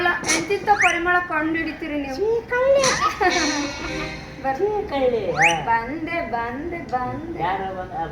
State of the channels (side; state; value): both; identical; correlation 1.00